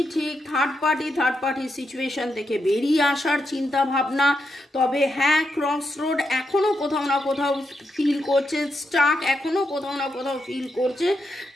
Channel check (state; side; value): normal; both; correlation 0.83